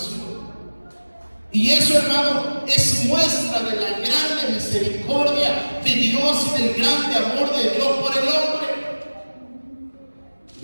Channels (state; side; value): inverted; both; correlation -1.00